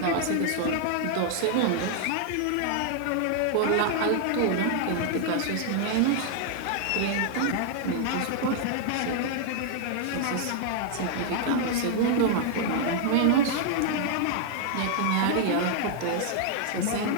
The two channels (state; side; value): different; both; correlation 0.00